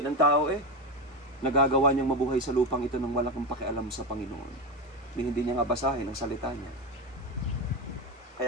ang tao eh. Nagagawa niyang mabuhay sa lupang ito nang wala kang pakialam sa Panginoon. Hindi niya nga basahin ang salita niya.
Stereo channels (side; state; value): both; normal; correlation 0.16